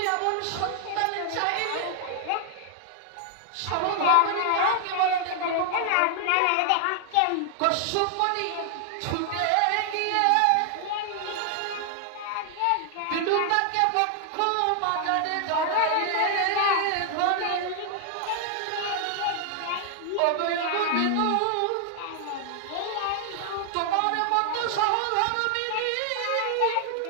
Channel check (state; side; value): different; both; correlation 0.00